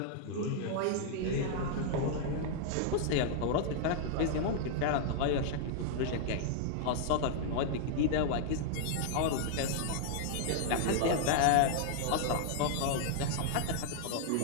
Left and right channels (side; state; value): both; different; correlation -0.01